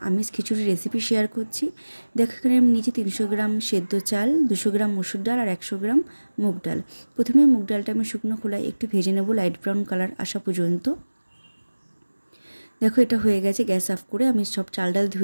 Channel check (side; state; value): both; inverted; correlation -1.00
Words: আমিষ খিচুড়ি রেসিপি শেয়ার করছি। দেখো এখানে আমি নিয়েছি 300 গ্রাম সেদ্ধ চাল, 200 গ্রাম মসুর ডাল আর 100 গ্রাম মুগ ডাল। প্রথমে মুগ ডালটা আমি শুকনো খোলায় একটু ভেজে নেব লাইট ব্রাউন কালার আসা পর্যন্ত। দেখো এটা হয়ে গেছে। গ্যাস অফ করে আমি সব চাল ডাল